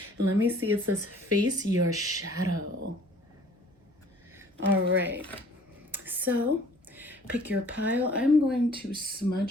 And let me see, it says face your shadow. All right, so pick your pile. I'm going to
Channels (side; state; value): both; normal; correlation 0.53